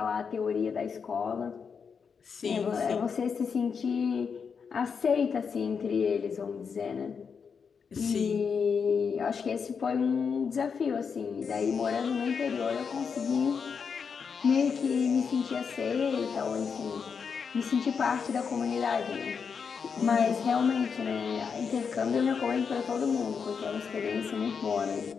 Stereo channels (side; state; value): right; quieter; 6.1 dB